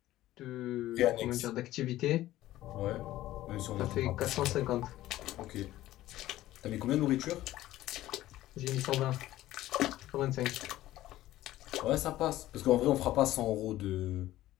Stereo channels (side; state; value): right; quieter; 15.1 dB